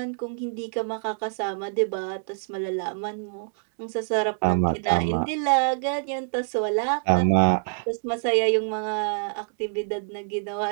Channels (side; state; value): left; silent; 61 dB below the other